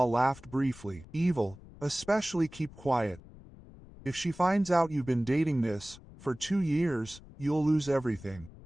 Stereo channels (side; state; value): left; noise; rumble, 19 dB below the sound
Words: laughed briefly. Evil, especially keep quiet. If she finds out you've been dating this, for 2 years, you'll lose everything.